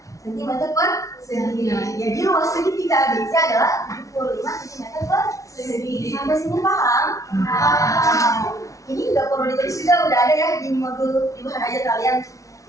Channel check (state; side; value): late; right; 0.16 ms